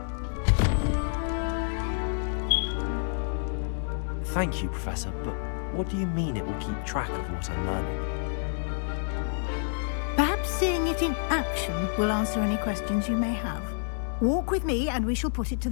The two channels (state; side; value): silent; right; digital silence